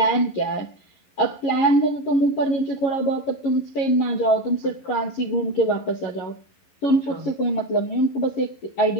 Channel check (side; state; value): right; late; 11 ms